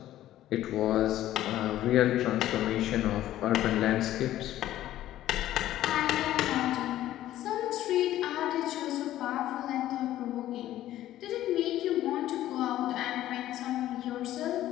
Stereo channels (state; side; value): quieter; right; 13.6 dB